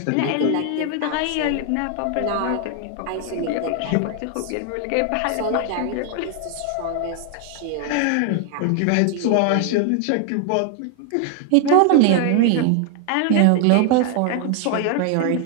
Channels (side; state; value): both; different; correlation 0.00